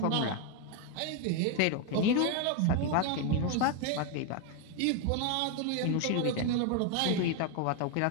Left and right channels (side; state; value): both; different; correlation 0.01